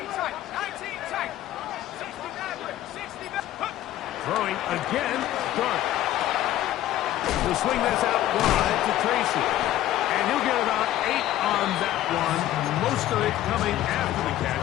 Throwing again, Dart. He'll swing this out wide to Tracy. And he'll get about 8 on that one. Most of it coming after the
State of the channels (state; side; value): quieter; right; 13.6 dB